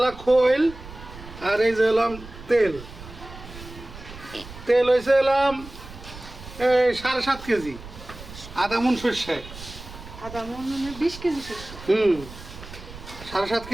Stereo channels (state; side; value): noise; right; rumble, 15 dB below the sound